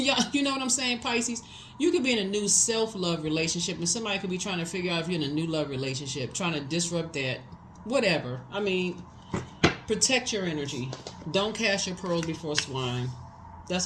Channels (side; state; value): both; identical; correlation 1.00